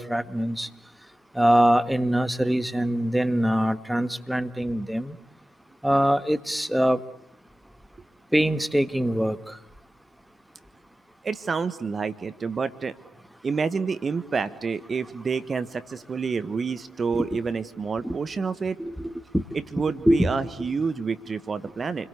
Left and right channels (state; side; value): normal; both; correlation 0.95